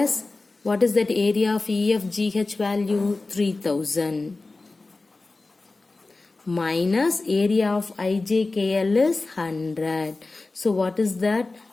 what is that area of EFGH value? 3,000. Minus area of IJKL is 100. So, what is that?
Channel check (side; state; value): right; quieter; 3.4 dB